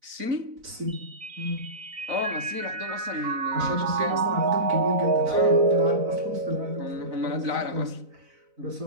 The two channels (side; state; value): left; late; 4.0 ms